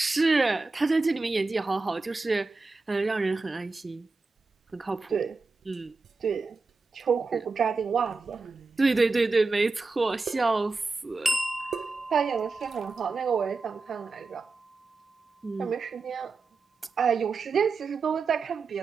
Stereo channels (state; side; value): quieter; left; 4.0 dB